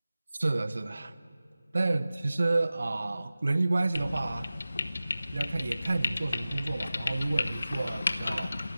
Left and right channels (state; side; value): inverted; both; correlation -0.96